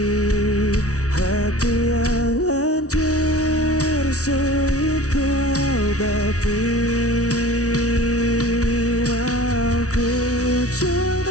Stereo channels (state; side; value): late; right; 0.66 ms